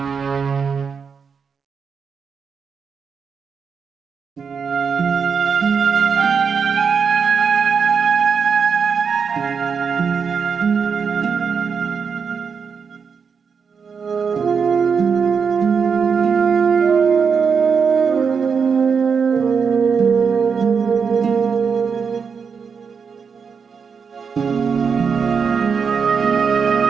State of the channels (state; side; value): quieter; left; 6.1 dB